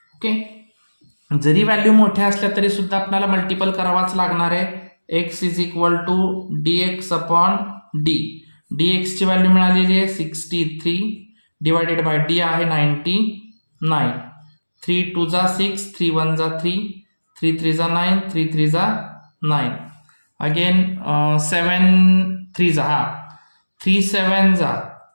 ओके. जरी व्हॅल्यू मोठ्या असल्या तरी सुद्धा आपल्याला मल्टिपल करावाच लागणार आहे. x is equal to dx upon d. dx ची व्हॅल्यू मिळालेली आहे 63 डिवायडेड बाय d आहे 99. 3 2 जा 6, 3 1 जा 3, 3 3 जा 9, 3 3 जा 9. अगेन 7 3 जा 3 7 जा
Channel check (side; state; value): both; inverted; correlation -1.00